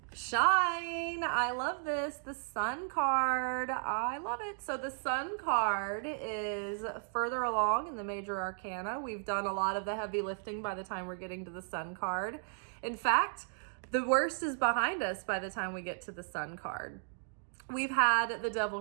Shine. I love this. The Sun card. I love it. So the Sun card is further along in the major arcana. We've done a lot of the heavy lifting by the time we're getting to the Sun card. In fact, the worst is behind us by the time we get to the Sun card. We've had the Devil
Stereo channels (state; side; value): silent; left; digital silence